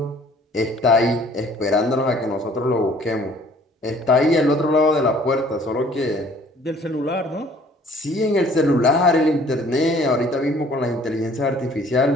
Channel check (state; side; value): normal; both; correlation 0.55